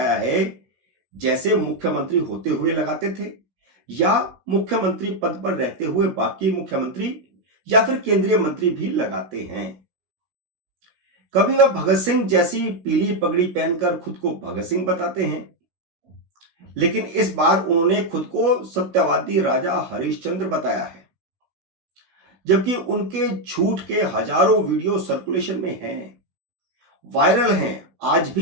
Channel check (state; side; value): late; left; 16 ms